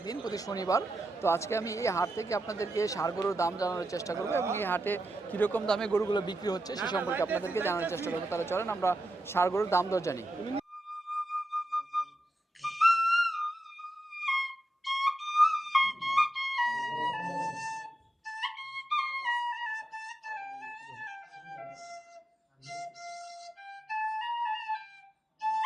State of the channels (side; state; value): both; normal; correlation 0.88